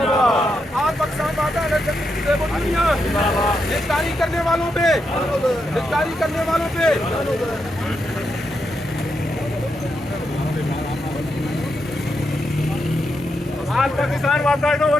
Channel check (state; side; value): normal; both; correlation 0.83